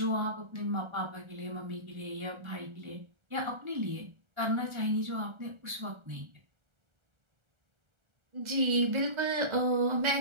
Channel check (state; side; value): late; left; 1.3 ms